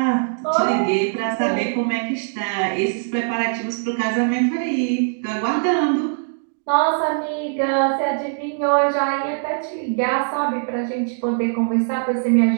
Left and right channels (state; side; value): silent; left; digital silence